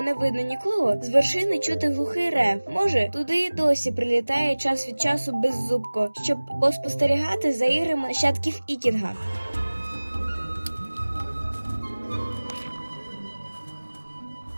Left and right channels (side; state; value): both; inverted; correlation -1.00